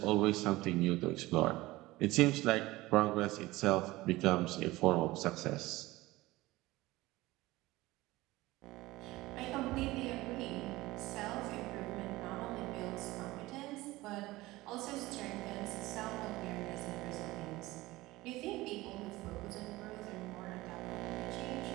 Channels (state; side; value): quieter; left; 19.0 dB